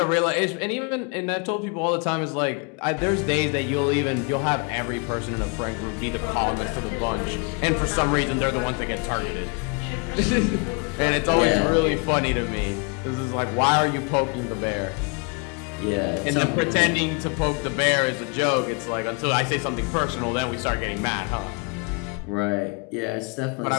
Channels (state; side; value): quieter; right; 32.9 dB